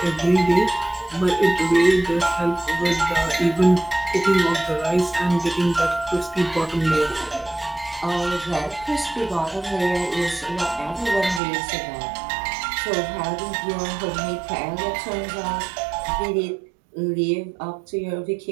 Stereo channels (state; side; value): drops out; left; at 11.4 s